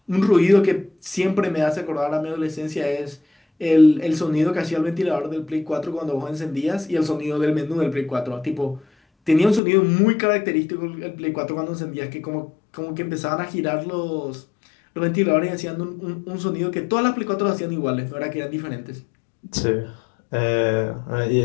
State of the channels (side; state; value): right; drops out; at 9.6 s